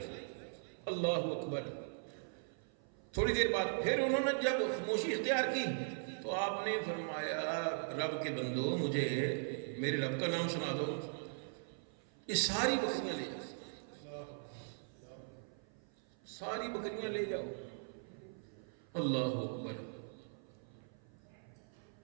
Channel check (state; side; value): silent; left; 51 dB below the other